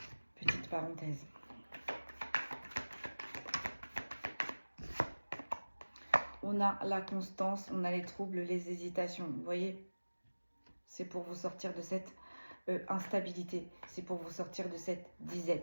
Petite parenthèse. On a la constance, on a les troubles, les hésitations. Vous voyez, c'est pour vous sortir de cette instabilité. C'est pour vous sortir de cette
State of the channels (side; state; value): both; inverted; correlation -1.00